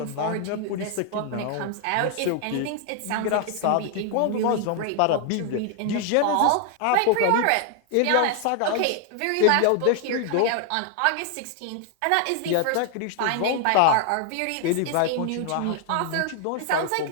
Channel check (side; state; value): both; different; correlation 0.00